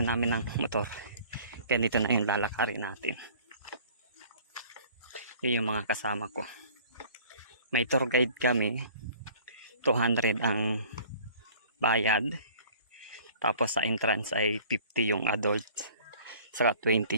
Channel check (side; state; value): both; inverted; correlation -0.50